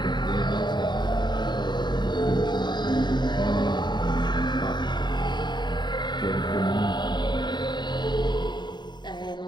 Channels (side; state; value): right; late; 0.21 ms